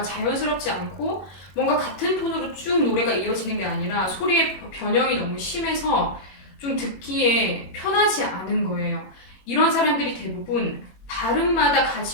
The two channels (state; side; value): late; right; 21 ms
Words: 자연스럽지 않고 뭔가 같은 톤으로 쭉 노래가 이어지는 게 아니라 소리의 변형이 너무 심해서 좀 듣기에 편하지 않은 거예요. 이런 사람들이 대부분 발음마다